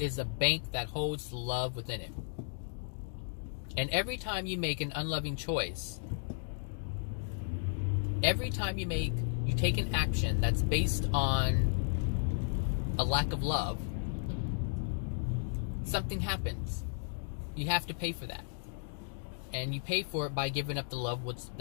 a bank that holds love within it. And every time you make an unloving choice, every time you take an action that's based on a lack of love, something happens. You have to pay for that. And you pay for it by giving up the love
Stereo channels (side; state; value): right; silent; digital silence